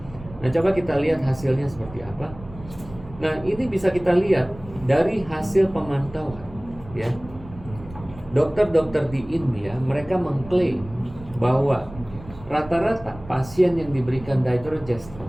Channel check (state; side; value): noise; right; rumble, 17 dB below the sound